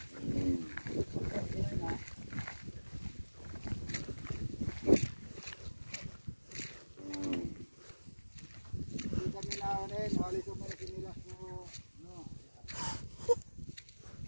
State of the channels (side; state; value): both; inverted; correlation -1.00